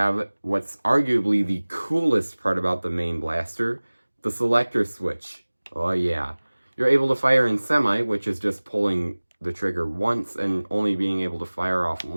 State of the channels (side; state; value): both; inverted; correlation -1.00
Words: what's arguably the coolest part about the main blaster, the selector switch. Oh yeah. You're able to fire in semi, which is just pulling the trigger once and only being able to fire off